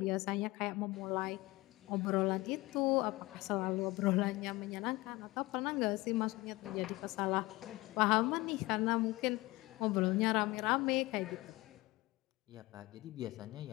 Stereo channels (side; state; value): right; quieter; 21.2 dB